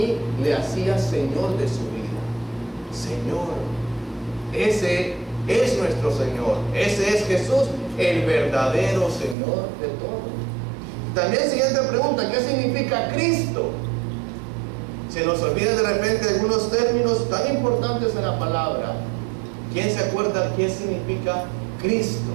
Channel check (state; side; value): drops out; left; at 9.3 s